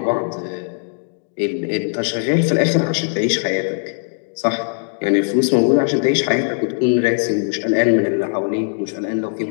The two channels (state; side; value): silent; right; digital silence